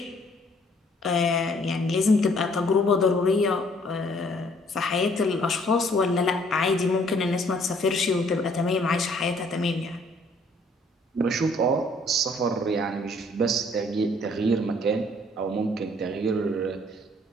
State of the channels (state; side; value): normal; both; correlation 0.62